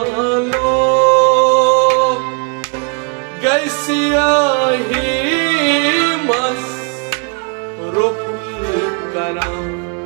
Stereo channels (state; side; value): quieter; left; 36.9 dB